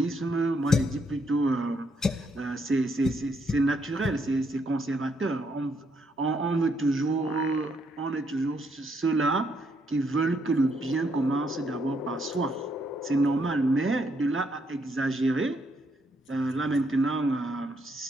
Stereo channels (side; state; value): both; normal; correlation 0.74